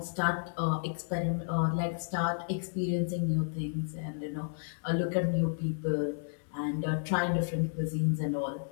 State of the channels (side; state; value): right; silent; digital silence